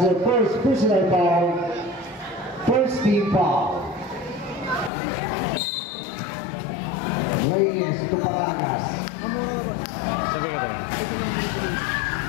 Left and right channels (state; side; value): drops out; right; at 4.9 s